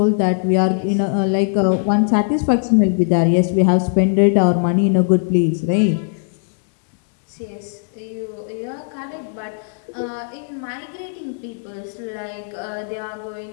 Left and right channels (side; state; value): right; silent; digital silence